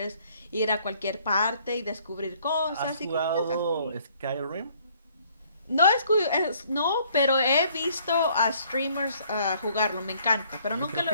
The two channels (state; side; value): inverted; both; correlation -0.62